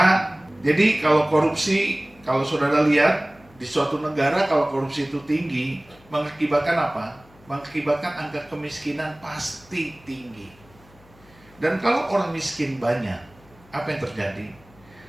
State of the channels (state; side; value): noise; left; hum, 27 dB below the sound